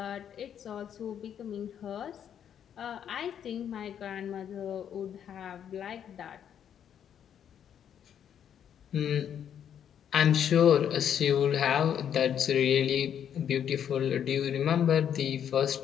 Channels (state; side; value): quieter; right; 9.0 dB